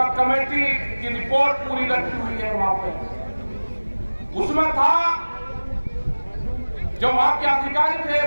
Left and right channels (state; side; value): inverted; both; correlation -1.00